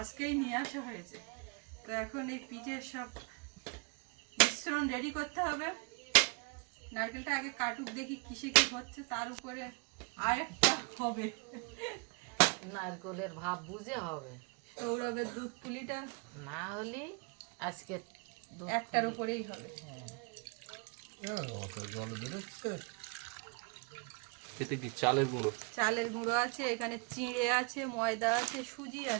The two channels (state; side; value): quieter; left; 33.2 dB